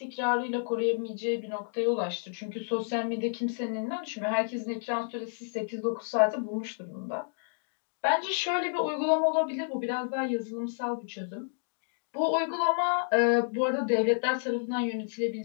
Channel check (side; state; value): right; silent; digital silence